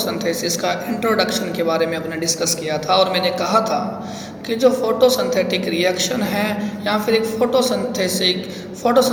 का इंट्रोडक्शन के बारे में अपने डिस्कस किया था और मैंने कहा था कि जो फोटोसिंथेटिक रिएक्शन है या फिर एक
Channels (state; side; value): identical; both; correlation 1.00